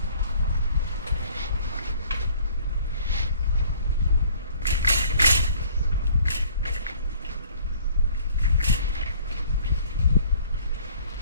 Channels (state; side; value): inverted; both; correlation -0.55